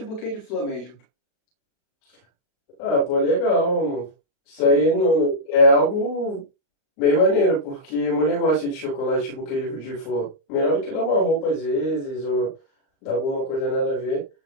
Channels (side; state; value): right; late; 35 ms